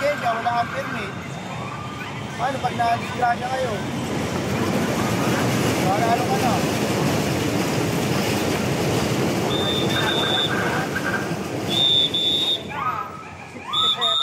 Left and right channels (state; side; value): identical; both; correlation 1.00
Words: wala kang permit. Paano pag na-disgrasya kayo? Wala ano ka na?